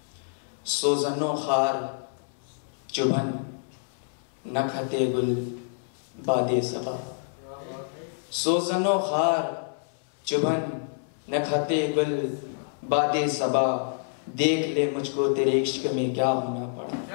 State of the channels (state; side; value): silent; right; 60 dB below the other